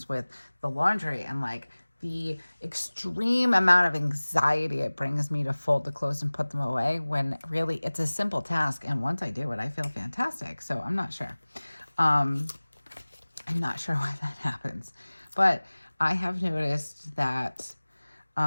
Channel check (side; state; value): both; inverted; correlation -1.00